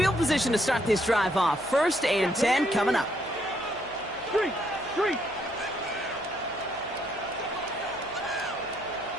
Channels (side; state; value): right; noise; hum, 23 dB below the sound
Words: position to start this drive off. 1st and 10 coming up. Street.